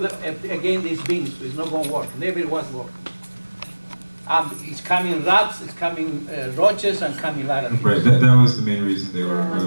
again these bins. It's not going to work. Never was work. It's coming rats, it's coming roaches, and coming a lot of things. Right, that was the main reason they were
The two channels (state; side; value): inverted; both; correlation -1.00